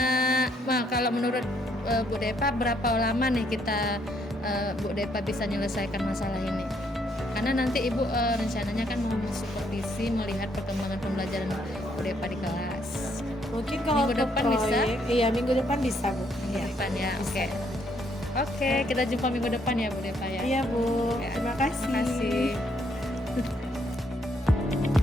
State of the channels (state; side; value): normal; both; correlation 0.71